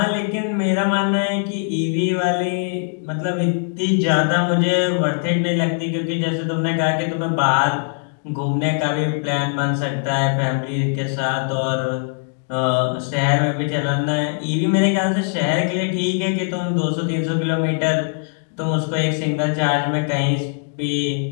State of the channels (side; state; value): right; silent; digital silence